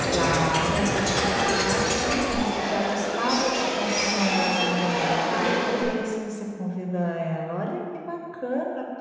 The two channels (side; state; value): both; identical; correlation 1.00